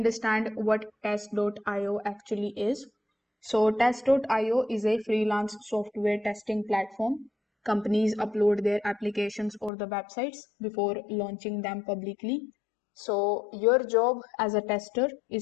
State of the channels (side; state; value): right; drops out; at 9.7 s